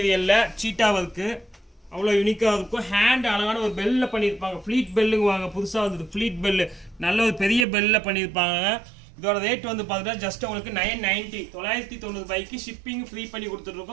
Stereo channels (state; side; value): drops out; left; at 7.7 s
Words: சீட்டா வர்க். அவ்வளோ யூனிக்கா இருக்கும். ஹேண்ட் அழகான ஒரு பெல்ல பண்ணியிருப்பாங்க. ஃப்ளீட் பெல்லுங்குவாங்க. புதுசாக வந்தது ஃப்ளீட் பெல்லு. நல்ல ஒரு பெரிய பெல்ல பண்ணியிருப்பாங்க. இதோட ரேட் வந்து பார்த்தீங்கன்னா ஜஸ்ட் உங்களுக்கு 990 990 ரூபாய்க்கு ஷிப்பிங் ஃப்ரீ பண்ணி